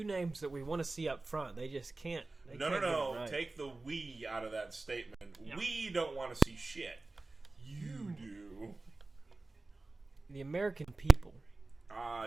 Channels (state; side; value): quieter; left; 3.3 dB